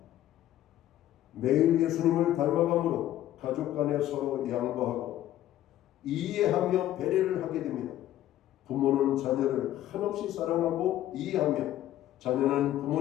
매일 예수님을 닮아감으로 가족 간에 서로 양보하고 이해하며 배려를 하게 됩니다. 부모는 자녀를 한없이 사랑하고 이해하며 자녀는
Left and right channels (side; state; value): right; quieter; 13.1 dB